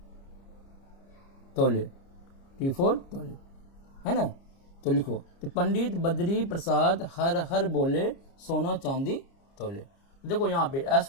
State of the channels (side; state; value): right; late; 29 ms